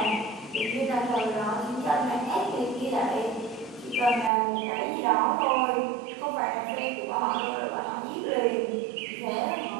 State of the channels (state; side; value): drops out; left; at 4.3 s